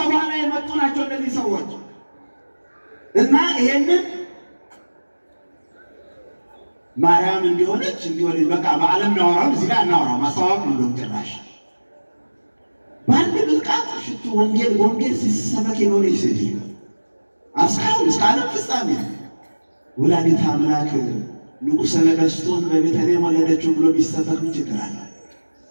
በኋላ የመጡ ናቸው እነዚህ ሰዎች እና ይሄንን ማርያም እንዲሆነች በቃ በዓለም እናወራው እዚህ ላይ እናወራው ማስተዋወቅ ነው። ጭራሽ በአንድ ብልቃጥ ሽቱ ወንጌል ሲሰበክ የኖረች ሴትዮ እስካሁን እስከ ዓለም ፍጻሜ ወላዲተ አምላክ ንጉሠ ነገሥቱን በቤተልሔም ወለደችው ብሎ ቢሰበክ ምን ችግር አለ?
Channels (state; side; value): inverted; both; correlation -1.00